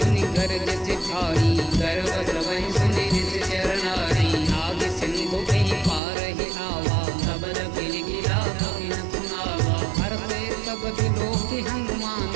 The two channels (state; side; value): drops out; left; at 6.0 s